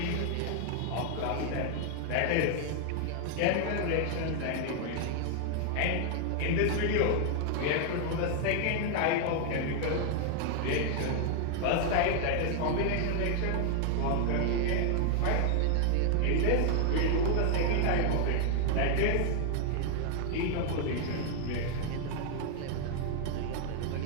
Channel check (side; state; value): both; different; correlation 0.00